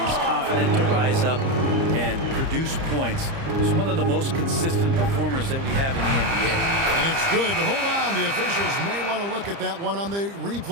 confident to rise up and produce points. He's one of the most consistent performers that we have in the NBA. And it's good, but hold on. The officials may want to look at that one on the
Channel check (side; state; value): left; late; 30 ms